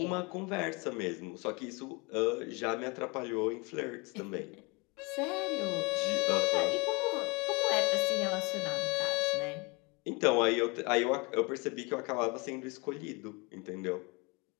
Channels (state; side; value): quieter; right; 27.4 dB